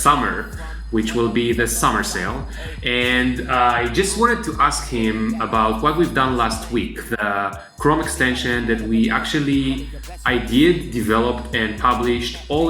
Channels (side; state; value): both; identical; correlation 1.00